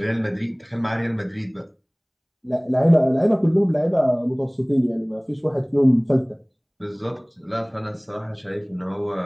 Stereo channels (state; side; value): identical; both; correlation 1.00